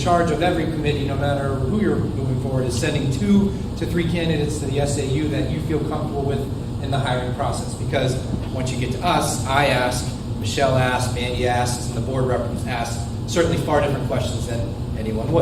of every committee, no matter who you're moving forward, is sending 2 to 3 candidates to the SAU that you feel comfortable with in the hiring process. Because once you get to us, I ask, Michelle asks, Mandy asks, and the board representatives ask certainly far different questions than anyone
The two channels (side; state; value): both; identical; correlation 1.00